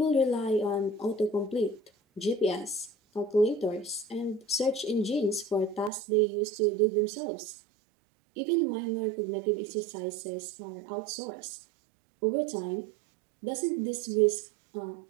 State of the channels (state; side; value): drops out; left; at 5.9 s